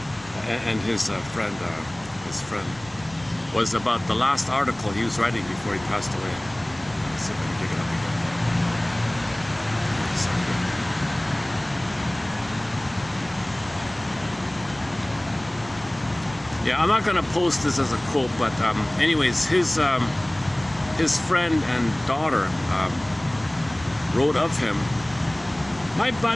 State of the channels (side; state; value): right; noise; rumble, 22 dB below the sound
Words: And his friend, was about the last article he was writing before he passed away. Let's see if I can dig it up again. Yeah, I'm not gonna post this as a quote, but anyways, his friend and daughter wrote of him, "My